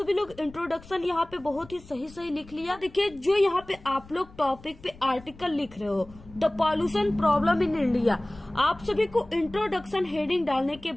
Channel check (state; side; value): noise; left; rumble, 21 dB below the sound